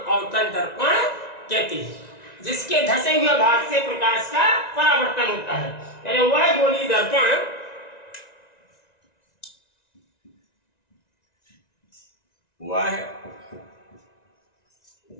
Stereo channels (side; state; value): right; late; 1.9 ms